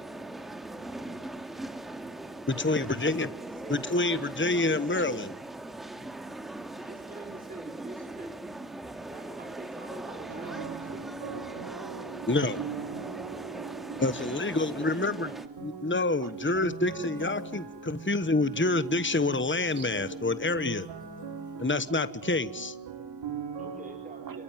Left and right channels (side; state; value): both; normal; correlation 0.33